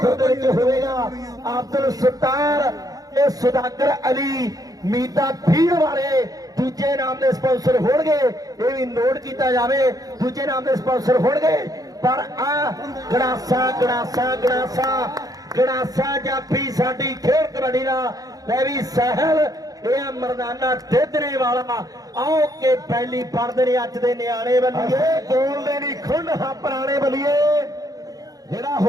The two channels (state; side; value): late; left; 0.18 ms